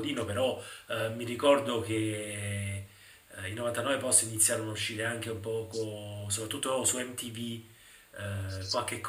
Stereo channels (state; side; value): identical; both; correlation 1.00